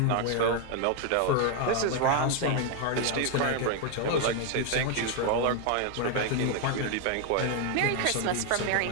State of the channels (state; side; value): different; both; correlation 0.01